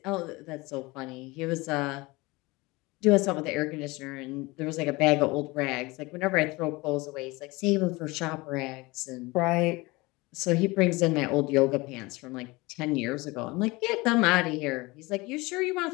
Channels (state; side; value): quieter; right; 23.0 dB